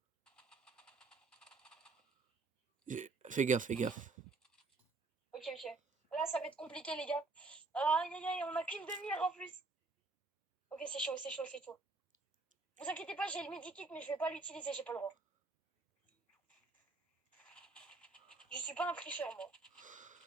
Fais gaffe, fais gaffe. Ok. Là, ça va être compliqué, les gars. Aïe, on a qu'une demi-heure en plus. Ok, c'est chaud. Vous inquiétez pas, j'ai le medikit, mais je vais pas l'utiliser, j'ai pas le droit. Je suis pas un tricheur, moi.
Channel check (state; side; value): quieter; left; 3.7 dB